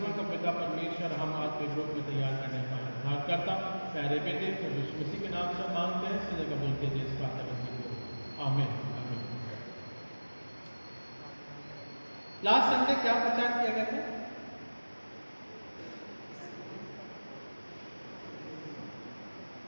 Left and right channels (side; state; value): both; inverted; correlation -1.00